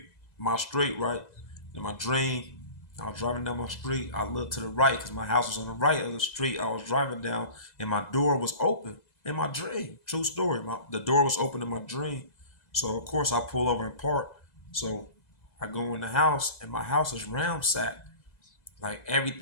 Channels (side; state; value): right; late; 2.0 ms